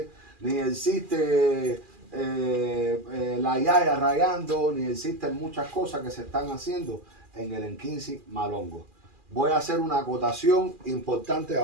ni existe la yaya rayando, ni existen muchas cosas que se están haciendo en el Enquinci Malongo. Voy a hacer una acotación importante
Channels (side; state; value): left; late; 2.4 ms